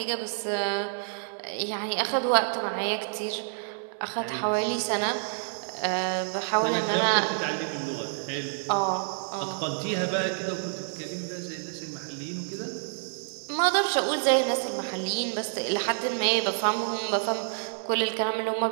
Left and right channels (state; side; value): silent; left; 59 dB below the other